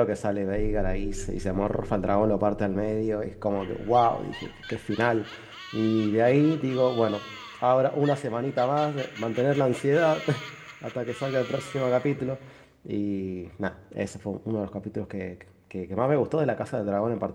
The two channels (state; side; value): identical; both; correlation 1.00